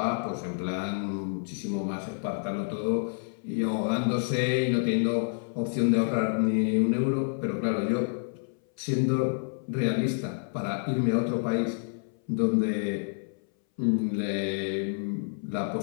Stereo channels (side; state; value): right; silent; 59 dB below the other